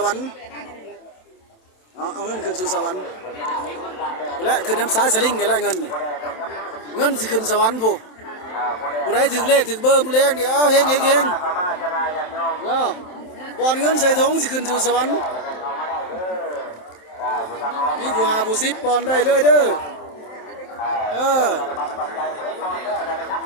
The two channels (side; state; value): right; late; 27 ms